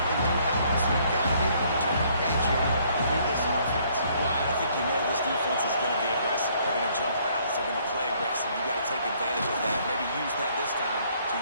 They do have it. So you've got to be able to turn the page here and read this offense. Well, I think you know this defense is going to be aggressive. They're going to jump routes. They're going to play aggressive. You got to take advantage of that. Maybe use that this time to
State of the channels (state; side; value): inverted; both; correlation -0.65